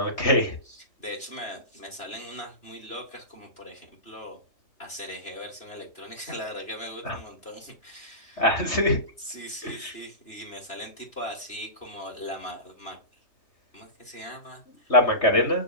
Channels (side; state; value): right; late; 2.9 ms